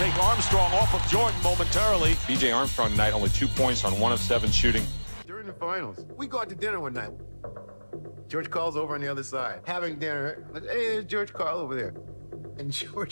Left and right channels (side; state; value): both; inverted; correlation -1.00